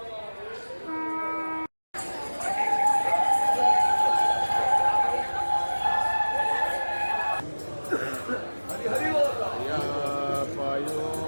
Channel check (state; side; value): inverted; both; correlation -1.00